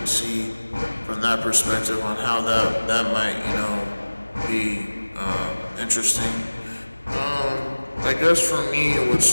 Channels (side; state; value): both; inverted; correlation -1.00